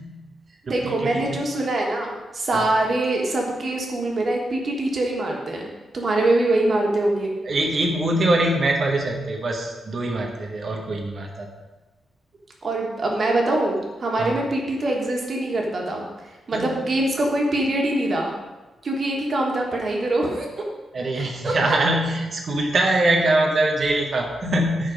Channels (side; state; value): both; normal; correlation 0.85